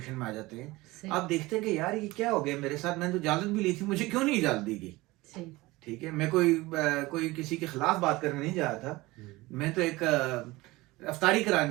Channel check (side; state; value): left; quieter; 20.6 dB